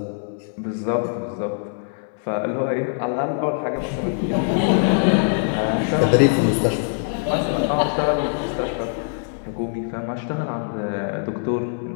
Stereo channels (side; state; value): right; silent; digital silence